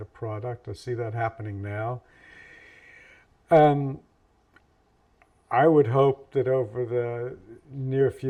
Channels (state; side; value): identical; both; correlation 1.00